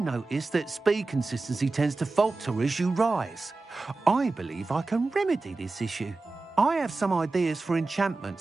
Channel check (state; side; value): quieter; left; 3.5 dB